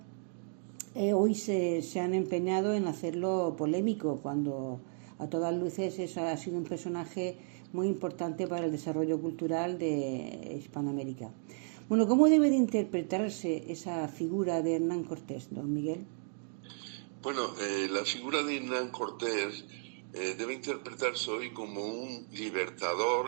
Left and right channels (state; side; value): silent; left; 55 dB below the other